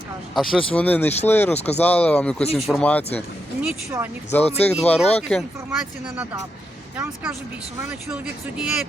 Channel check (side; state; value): both; normal; correlation 0.84